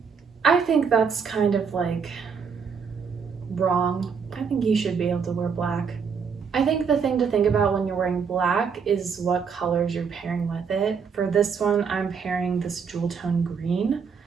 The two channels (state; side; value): quieter; left; 6.1 dB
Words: I think that's kind of like wrong. I think you should be able to wear black. I think the thing to think about when you're wearing black is what colors you're pairing with it. For this one, I'm pairing this jewel tone green,